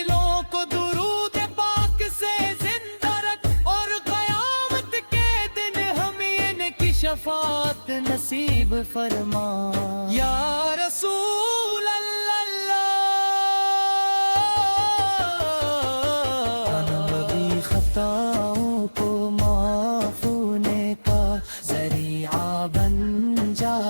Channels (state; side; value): inverted; both; correlation -1.00